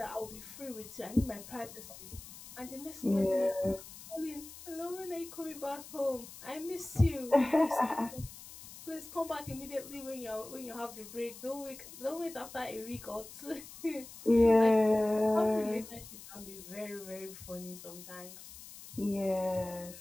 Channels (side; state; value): left; noise; hiss, 15 dB below the sound